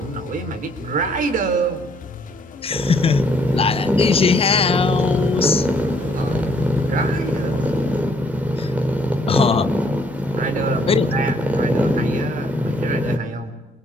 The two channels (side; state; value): both; normal; correlation 0.66